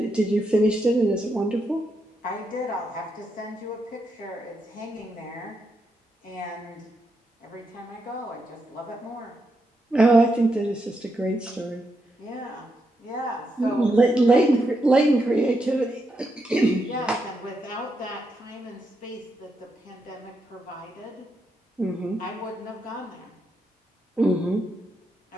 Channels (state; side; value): normal; both; correlation 0.82